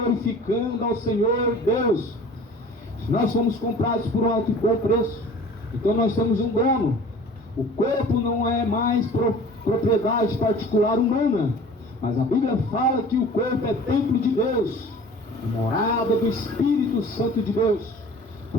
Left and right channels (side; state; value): both; normal; correlation 0.45